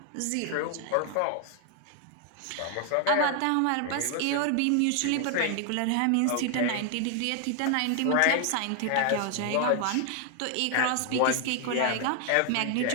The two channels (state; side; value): different; both; correlation 0.00